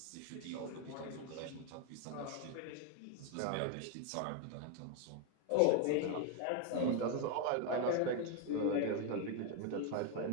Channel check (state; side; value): different; both; correlation 0.01